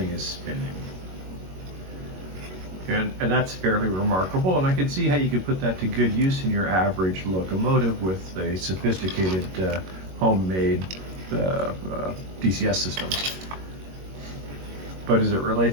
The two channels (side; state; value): left; late; 21 ms